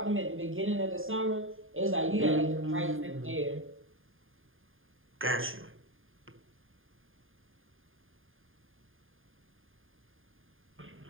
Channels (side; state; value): left; late; 0.59 ms